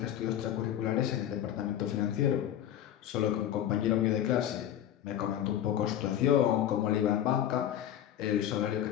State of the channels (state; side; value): quieter; right; 11.1 dB